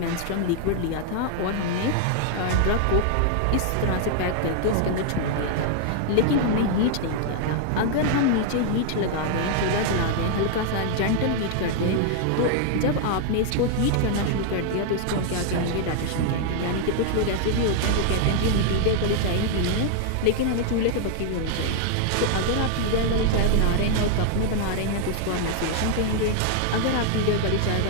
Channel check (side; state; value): both; different; correlation 0.00